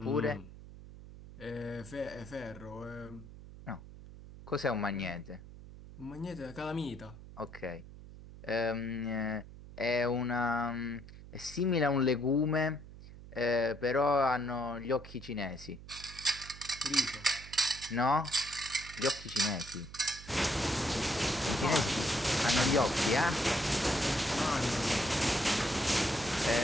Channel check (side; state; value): right; noise; hum, 16 dB below the sound